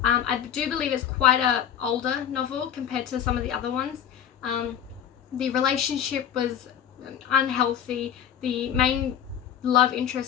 I do believe it's quite a older novel compared to some of the other ones. The relationship was unhealthy. The main love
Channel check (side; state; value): right; quieter; 9.3 dB